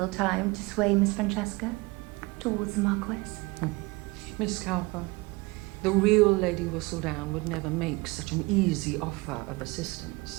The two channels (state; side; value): quieter; left; 24.3 dB